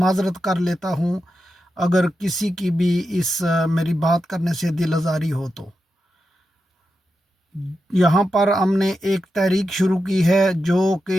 کر لیتا ہوں اگر کسی کی بھی اس میری بات کرنے سے دل آزاری ہو تو۔ یہاں پر ہم نے ایک تحریک شروع کی ہے جو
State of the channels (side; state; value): both; normal; correlation 0.88